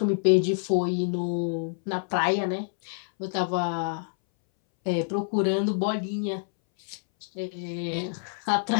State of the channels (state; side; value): silent; right; 60 dB below the other